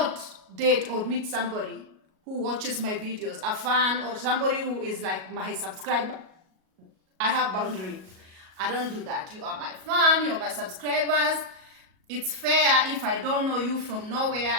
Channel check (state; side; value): late; left; 37 ms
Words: date or meet somebody who watches my videos, a fan, or somebody who is like my subscriber. I have boundary. I don't do that. You are my fan, you are my subscribers. It's fair if I don't know you from nowhere,